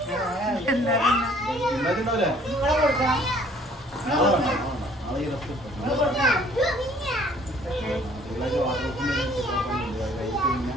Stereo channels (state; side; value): normal; both; correlation 0.58